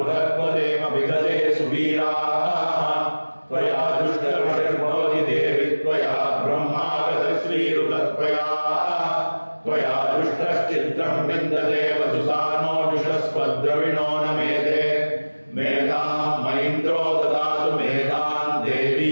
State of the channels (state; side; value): inverted; both; correlation -1.00